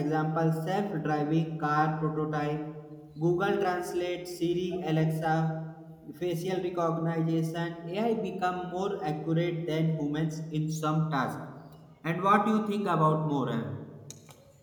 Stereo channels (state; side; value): identical; both; correlation 1.00